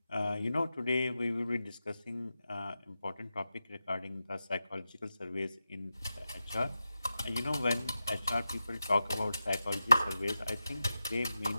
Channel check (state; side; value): inverted; both; correlation -0.91